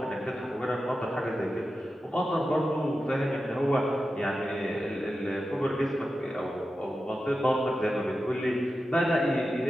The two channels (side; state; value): both; normal; correlation 0.92